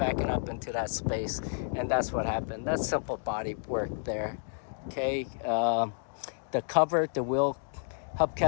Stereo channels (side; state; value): right; silent; digital silence